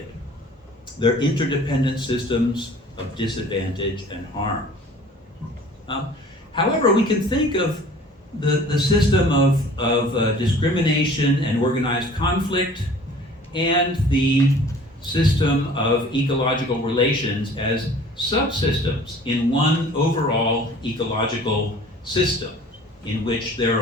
They're interdependent systems of disadvantage and harm. However, we can think of the system of discrimination and organized conflict and the system of ecological relations as subsystems in one overall ecological system in which there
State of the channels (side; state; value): both; normal; correlation 0.49